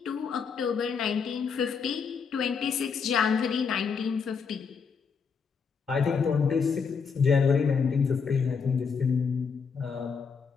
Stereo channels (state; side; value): quieter; right; 5.9 dB